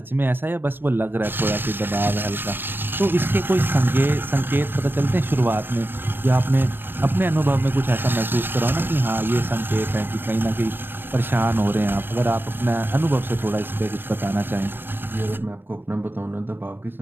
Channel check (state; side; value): late; left; 0.098 ms